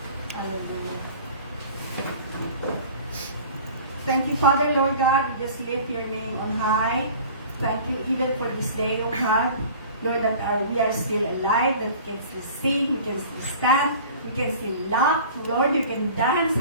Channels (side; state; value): both; inverted; correlation -0.43